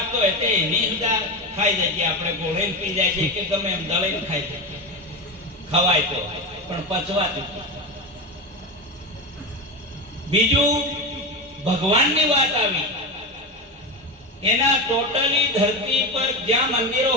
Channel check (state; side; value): normal; both; correlation 0.19